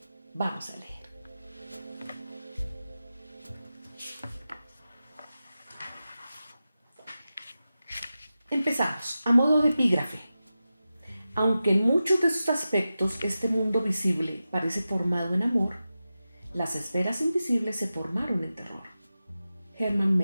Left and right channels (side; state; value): both; inverted; correlation -0.93